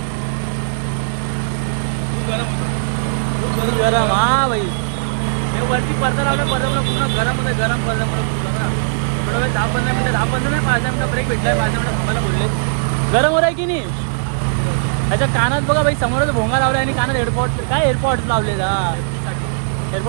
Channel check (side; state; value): left; silent; digital silence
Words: गरम हा भाई. हे वरती पडदा लावला पडदा पूर्ण गरम होतं गरम पडदा पूर्ण ना. थोडा वेळ 10-15 मिनिटं 10-15 नाही 5 मिनिटं ब्रेक भेटलाय 5 मिनिटं थांबायला बोलले. गरम होत आहे की नाही. त्याच्या कानात बघा भाई समोरच भोंगा लावला आणि कानात एअरपॉड काय एअरपॉड लावले